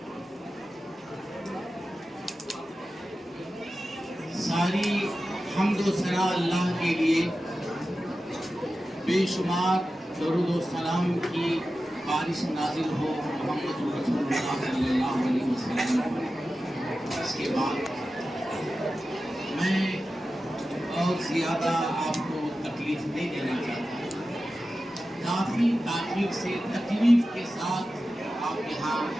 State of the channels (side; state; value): both; normal; correlation 0.93